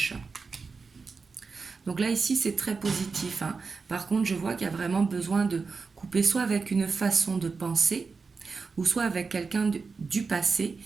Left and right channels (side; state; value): left; quieter; 4.7 dB